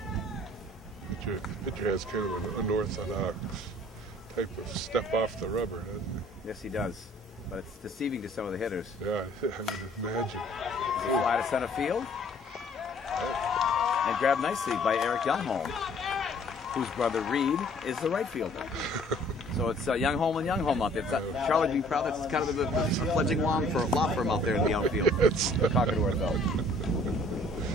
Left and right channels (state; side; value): normal; both; correlation 0.56